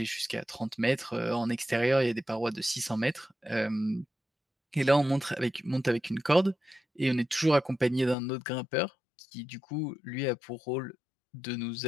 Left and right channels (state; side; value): drops out; right; at 8.2 s